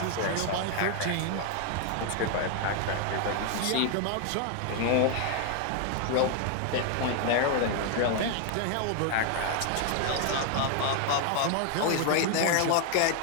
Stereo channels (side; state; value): both; different; correlation 0.00